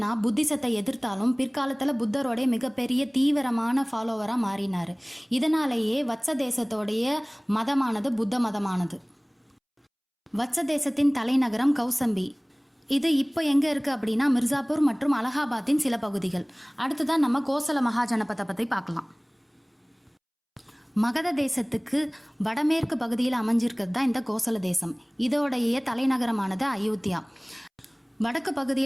புத்திசத்தை எதிர்த்தாலும் பிற்காலத்தில் புத்தரோடைய மிகப்பெரிய தீவிரமான ஃபாலோவராக மாறினார். இதனாலேயே வத்ச தேசத்தோடைய மதமானது புத்த மதமானது. வத்ச தேசத்தின் தலைநகரம் கௌசம்பி. இது இப்போ எங்கே இருக்குது அப்படின்னா மிர்சாப்பூர் மற்றும் அலகாபாத்தின் சில பகுதிகள். அடுத்ததான் நம்ம கோசல மகாஜனபதை பற்றி பார்க்கலாம். மகத தேசத்துக்கு வடமேற்கு பகுதியில் அமைஞ்சிருக்கிறது தான் இந்த கோசல தேசம். இதோடைய தலைநகரமானது அயோத்தியா. வடக்கு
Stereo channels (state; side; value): identical; both; correlation 1.00